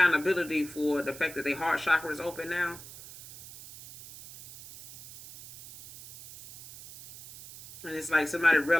for the fact that their heart chakra is open now. And it's like somebody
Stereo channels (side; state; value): right; noise; hiss, 16 dB below the sound